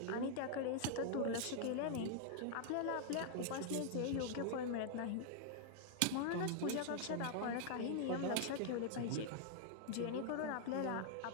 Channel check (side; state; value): both; different; correlation 0.00